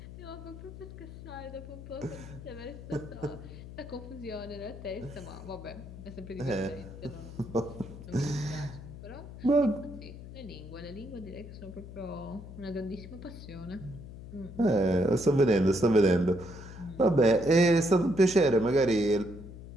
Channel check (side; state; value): left; noise; hum, 13 dB below the sound